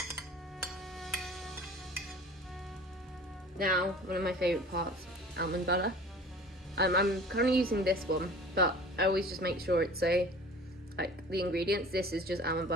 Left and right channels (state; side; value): normal; both; correlation 0.43